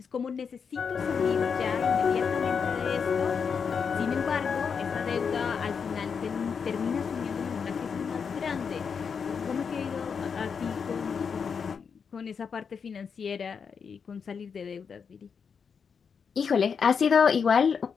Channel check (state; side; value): quieter; right; 6.2 dB